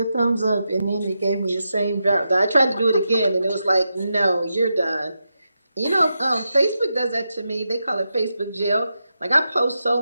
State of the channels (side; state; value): both; inverted; correlation -0.87